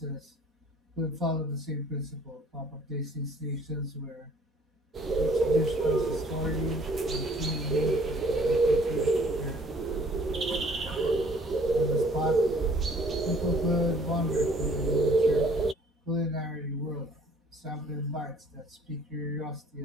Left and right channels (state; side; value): normal; both; correlation 0.56